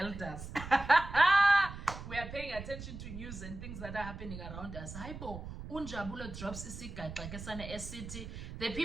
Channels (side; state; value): right; noise; rumble, 10 dB below the sound